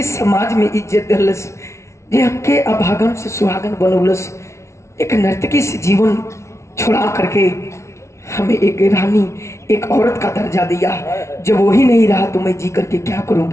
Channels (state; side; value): late; right; 0.13 ms